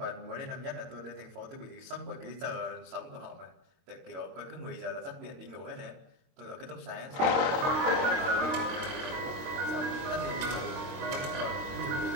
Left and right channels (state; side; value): late; left; 23 ms